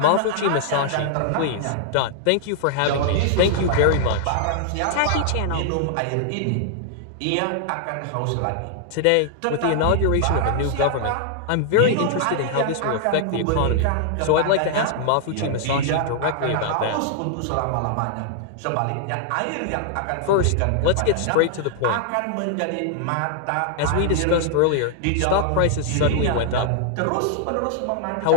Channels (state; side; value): different; both; correlation -0.01